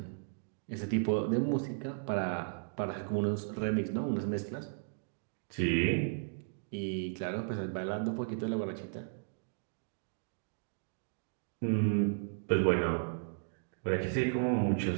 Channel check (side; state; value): left; silent; digital silence